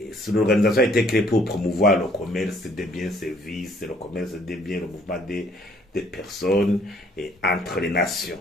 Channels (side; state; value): both; normal; correlation 0.61